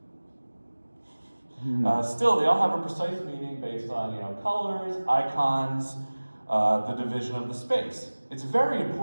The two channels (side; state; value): both; inverted; correlation -1.00